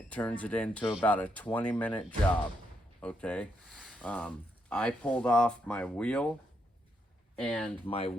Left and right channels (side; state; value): both; normal; correlation 0.79